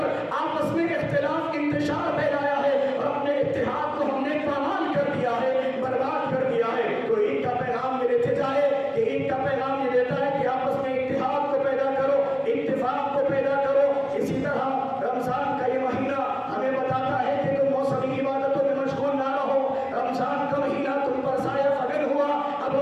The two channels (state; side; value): identical; both; correlation 1.00